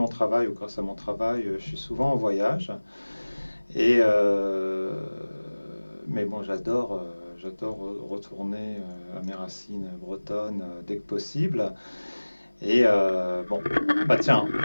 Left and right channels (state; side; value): inverted; both; correlation -1.00